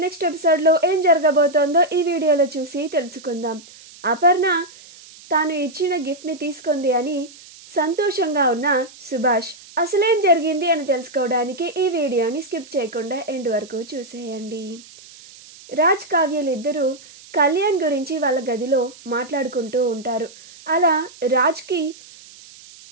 next ఎపిసోడ్లో ఏం జరగబోతోందో ఈ వీడియోలో చూసి తెలుసుకుందాం. అపర్ణ తాను ఇచ్చిన గిఫ్ట్ని తీసుకుంది అని సంతోషంగా ఉన్న సుభాష్ అసలేం జరిగింది అని తెలుసుకోవడానికి ఈ వీడియోని స్కిప్ చేయకుండా ఎండ్ వరకు చూసేయండి. రాజ్ కావ్యలు ఇద్దరూ కళ్యాణ్ గురించి వాళ్ళ గదిలో మాట్లాడుకుంటూ ఉంటారు. అలా రాజ్కి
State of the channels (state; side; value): noise; right; hiss, 21 dB below the sound